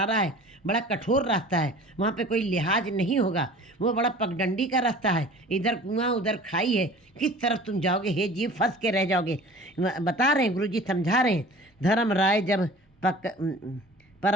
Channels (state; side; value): normal; both; correlation 0.43